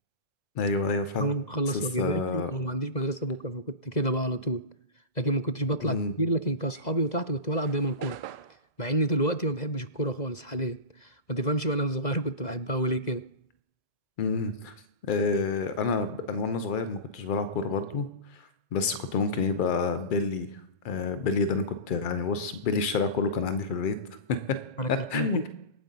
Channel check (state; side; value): late; right; 2.4 ms